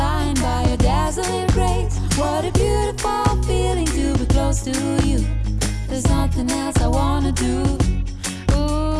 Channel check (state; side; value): identical; both; correlation 1.00